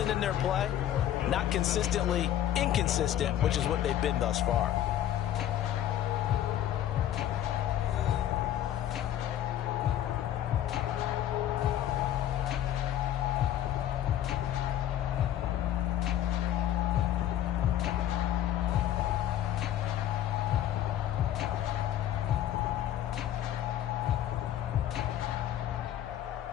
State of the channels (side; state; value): right; quieter; 11.7 dB